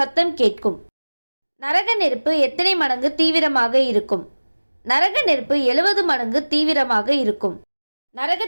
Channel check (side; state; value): both; inverted; correlation -1.00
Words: கேட்கும். நரக நெருப்பு எத்தனை மடங்கு தீவிரமாக இருக்கும்? நரக நெருப்பு 70 மடங்கு தீவிரமாக இருக்கும்.